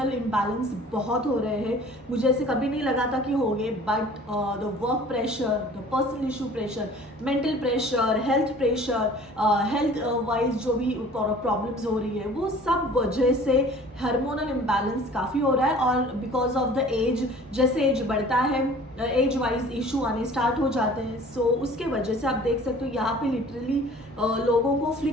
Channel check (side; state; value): both; normal; correlation 0.48